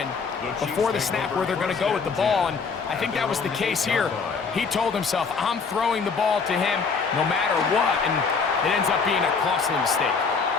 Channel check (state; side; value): quieter; right; 5.2 dB